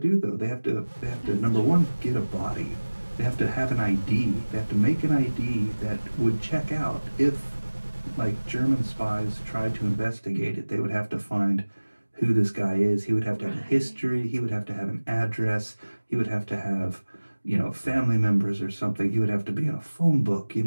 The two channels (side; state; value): both; inverted; correlation -1.00